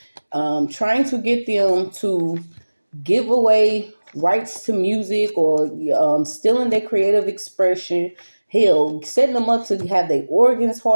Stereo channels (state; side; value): inverted; both; correlation -1.00